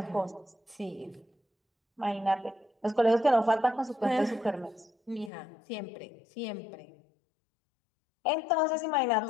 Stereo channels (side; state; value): right; drops out; at 5.3 s